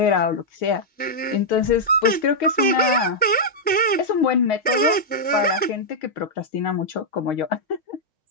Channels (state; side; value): normal; both; correlation -0.07